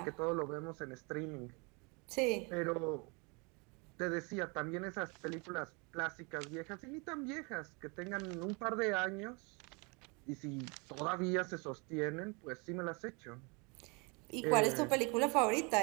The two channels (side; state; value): left; quieter; 30.9 dB